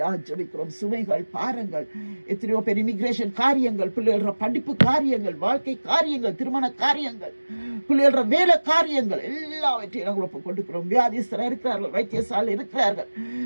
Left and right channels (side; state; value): both; inverted; correlation -1.00